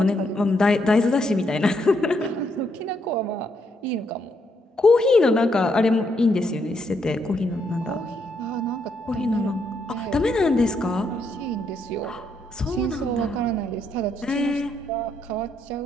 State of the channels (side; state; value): both; normal; correlation 0.76